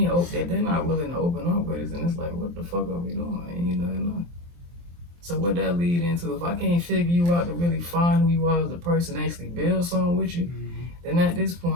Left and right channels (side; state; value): left; late; 23 ms